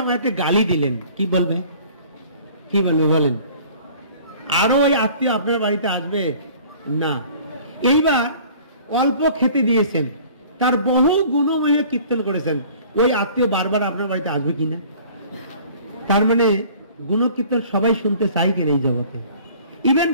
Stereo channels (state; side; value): inverted; both; correlation -0.50